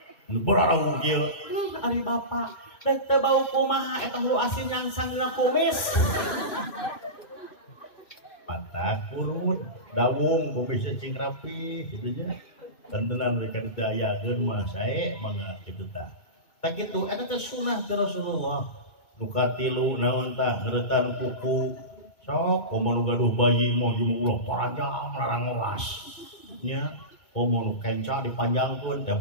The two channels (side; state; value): right; late; 2.2 ms